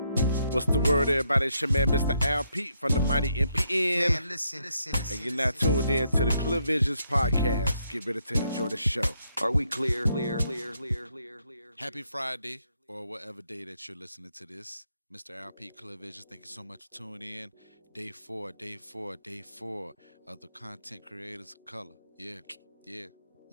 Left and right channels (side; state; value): both; inverted; correlation -0.76